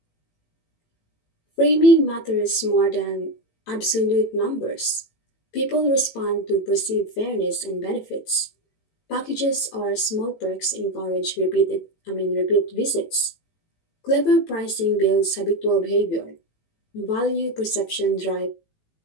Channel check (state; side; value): late; right; 18 ms